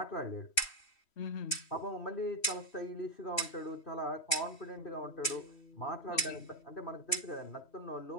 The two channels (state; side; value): late; right; 3.1 ms